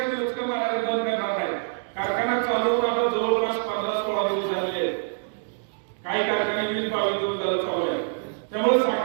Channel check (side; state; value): left; silent; digital silence